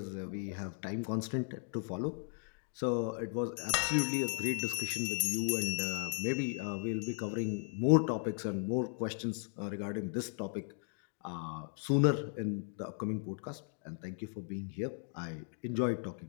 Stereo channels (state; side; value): silent; right; 54 dB below the other